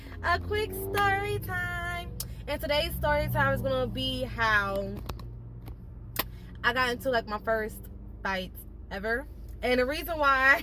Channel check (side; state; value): both; identical; correlation 1.00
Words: And today's story time is gonna be how I got into like my first fight ever. And the reason